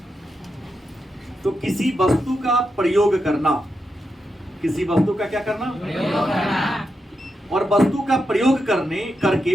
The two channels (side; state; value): both; normal; correlation 0.86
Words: तो किसी वस्तु का प्रयोग करना, किसी वस्तु का क्या करना? प्रयोग करना। और वस्तु का प्रयोग